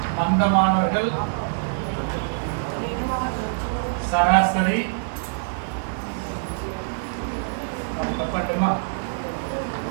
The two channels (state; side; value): silent; left; digital silence